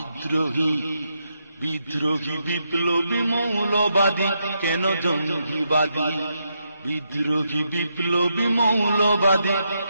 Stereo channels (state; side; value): inverted; both; correlation -0.81